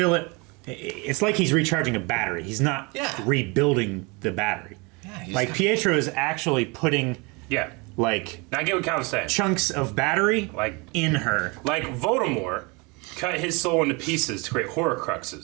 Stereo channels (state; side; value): quieter; left; 28.4 dB